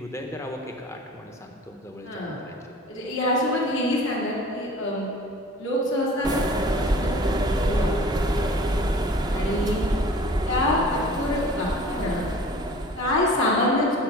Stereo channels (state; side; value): normal; both; correlation 0.44